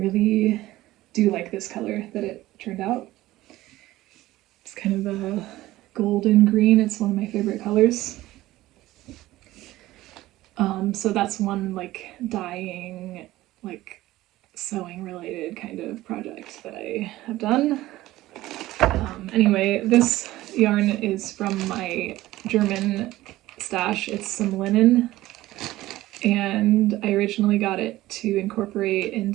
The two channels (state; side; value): quieter; left; 16.6 dB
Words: do like this color that it turned out. It's kind of a golden green. It's one of my favorite colors. So that's one like dyeing, like sewing related kind of project that I have done. Anyway, this yarn is from my German stash. It's some linen, and I originally got it to incorporate